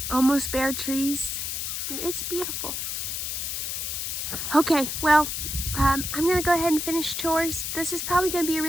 almost bare trees, it's beautiful. Okay, well, I'm gonna go ahead and finish chores. This is probably gonna be a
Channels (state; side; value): noise; left; hiss, 3 dB below the sound